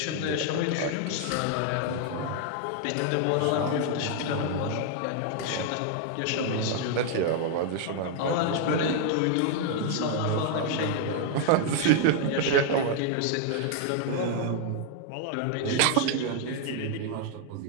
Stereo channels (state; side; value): different; both; correlation 0.00